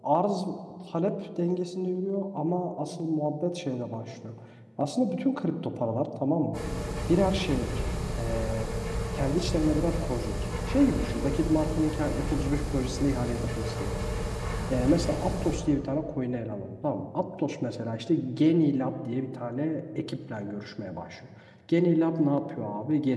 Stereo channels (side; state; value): both; identical; correlation 1.00